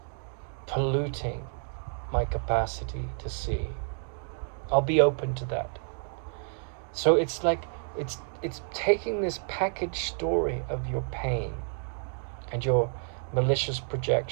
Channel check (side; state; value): left; silent; 58 dB below the other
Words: polluting my capacity to see. I'll be open to that. So it's like, it's taking this packaged story of your pain and your malicious